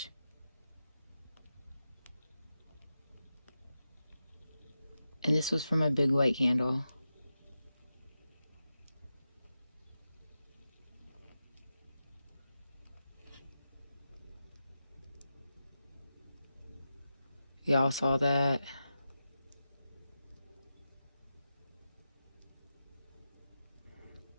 And this was for my big white candle. Y'all saw that?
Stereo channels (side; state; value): both; inverted; correlation -0.91